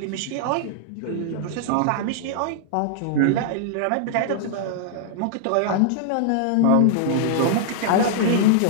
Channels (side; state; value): both; different; correlation -0.01